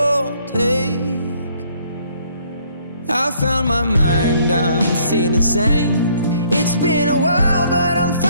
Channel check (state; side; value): inverted; both; correlation -0.63